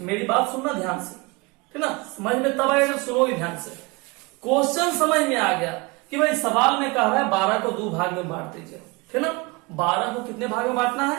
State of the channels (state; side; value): quieter; left; 25.5 dB